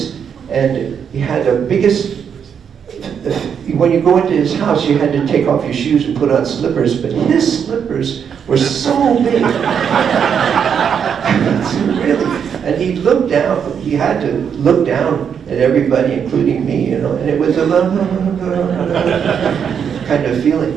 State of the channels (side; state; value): left; quieter; 7.5 dB